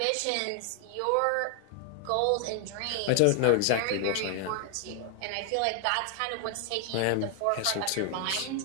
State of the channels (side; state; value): both; different; correlation 0.00